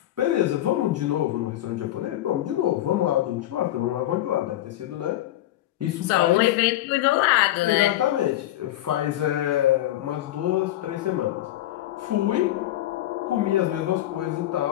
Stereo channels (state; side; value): quieter; right; 14.2 dB